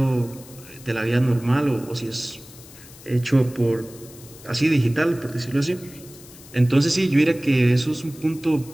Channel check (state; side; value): noise; left; hiss, 20 dB below the sound